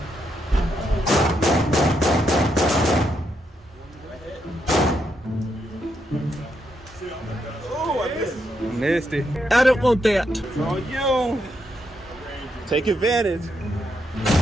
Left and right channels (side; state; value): both; normal; correlation 0.80